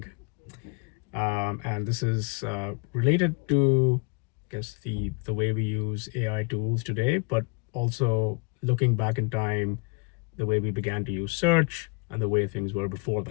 And this is related to, I guess, the way we use AI tools today, but also looking back in time, the way we began to use search and the way things were before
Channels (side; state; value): right; quieter; 30.2 dB